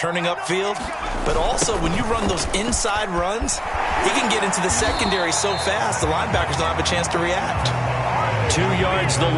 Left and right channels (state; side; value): identical; both; correlation 1.00